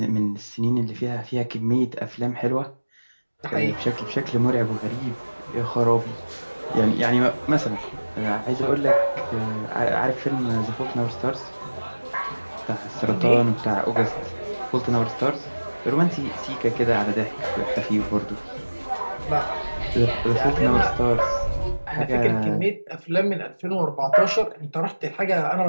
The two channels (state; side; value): inverted; both; correlation -1.00